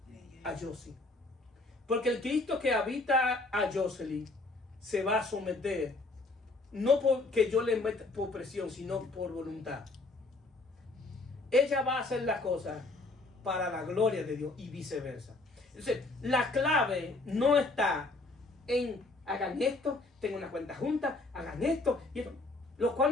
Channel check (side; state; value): right; quieter; 3.1 dB